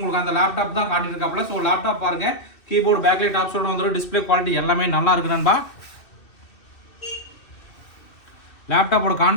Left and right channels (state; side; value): late; right; 2.6 ms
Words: அந்த லேப்டாப் தான் காட்டிட்டு இருக்காப்புல. ஸோ லேப்டாப் பாருங்க, கீபோர்டு பேக்லைட் ஆப்ஷனோட வந்துடும். டிஸ்பிளே குவாலிட்டி எல்லாமே நல்லா இருக்கு நண்பா. லேப்டாப்போட